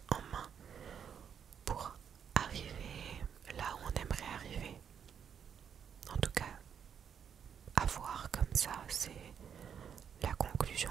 en main pour arriver là où on aimerait arriver. En tout cas, à voir comme ça, c'est la conclusion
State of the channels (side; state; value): left; quieter; 7.8 dB